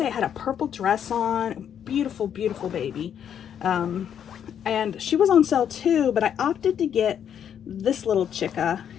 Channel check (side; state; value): right; quieter; 8.9 dB